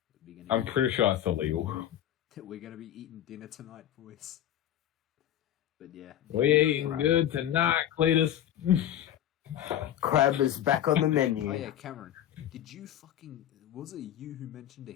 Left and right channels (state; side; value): quieter; right; 11.4 dB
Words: I'm pretty sure it's illegal. We're going to be eating dinner tonight, boys. But yeah. We're eating good tonight, Cletus. Crab is back on the menu. Oh yeah, Cameron. Did you fucking... Was it you who mentioned a